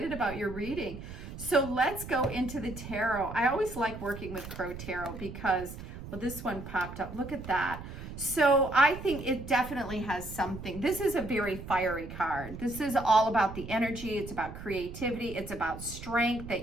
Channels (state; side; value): noise; right; rumble, 11 dB below the sound